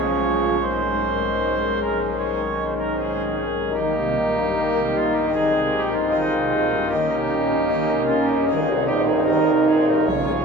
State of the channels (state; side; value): normal; both; correlation 0.48